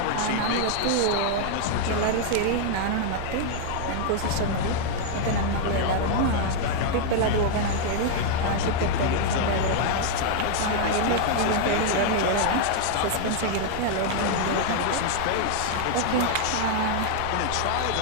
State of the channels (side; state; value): both; different; correlation 0.00